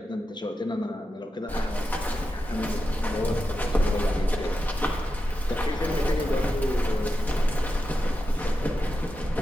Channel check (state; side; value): normal; both; correlation 0.89